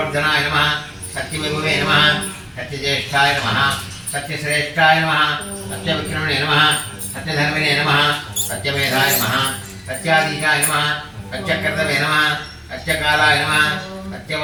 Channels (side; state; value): both; identical; correlation 1.00